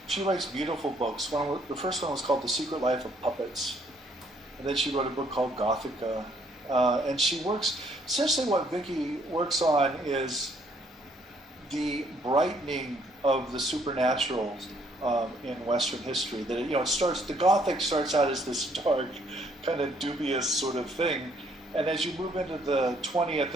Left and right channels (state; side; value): normal; both; correlation 0.66